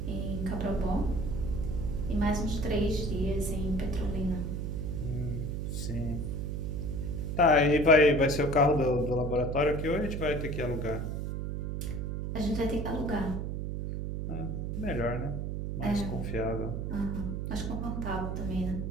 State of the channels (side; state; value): right; noise; hum, 3 dB below the sound